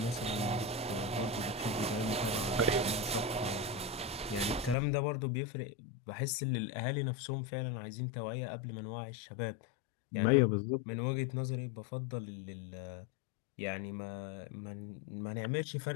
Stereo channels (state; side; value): drops out; right; at 4.8 s